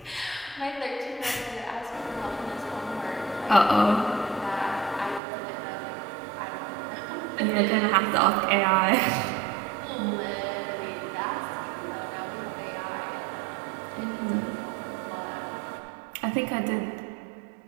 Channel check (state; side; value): drops out; left; at 5.2 s